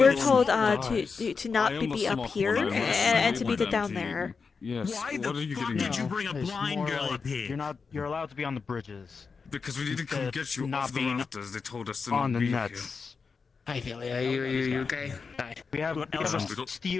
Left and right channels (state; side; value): quieter; right; 5.1 dB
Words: told to not be up here and to be down there. Yes. Why What are you getting did at? you bring a It's blind more girl like up here? You're allowed to be on the bridges. Because we need to come Instead get you not off the being rafters. They told us to on not the be nuts. Hi, Philly. Are you okay? Hi. We have